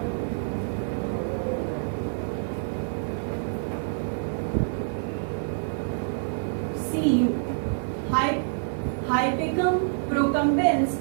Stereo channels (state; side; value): silent; left; 60 dB below the other